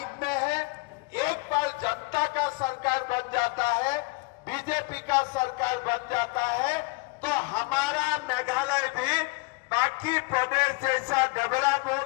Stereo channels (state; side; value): quieter; right; 27.1 dB